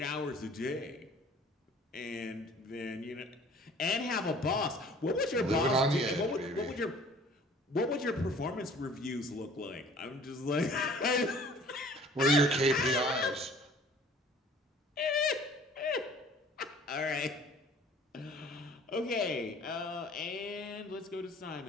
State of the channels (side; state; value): both; normal; correlation 0.51